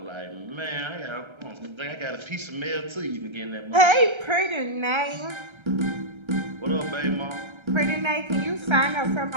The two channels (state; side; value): late; left; 1.3 ms